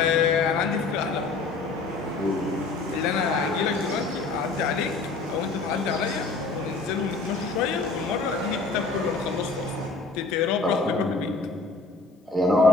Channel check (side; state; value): right; quieter; 3.9 dB